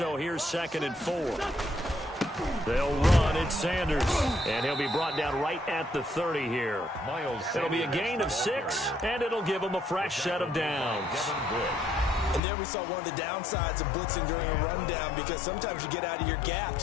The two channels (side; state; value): right; drops out; at 12.4 s